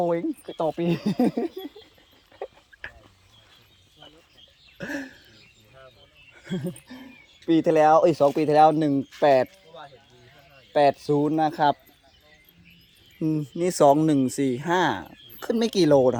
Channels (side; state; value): both; identical; correlation 1.00